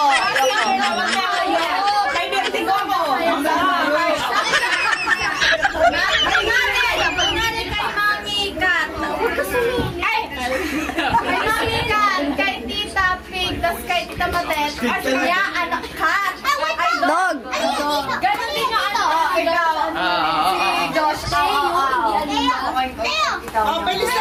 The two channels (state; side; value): identical; both; correlation 1.00